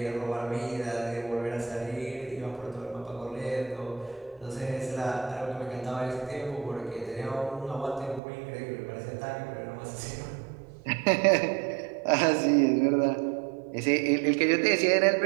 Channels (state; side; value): drops out; left; at 8.2 s